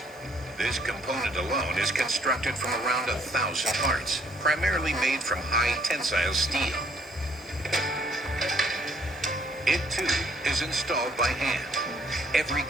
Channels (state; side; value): normal; both; correlation 0.65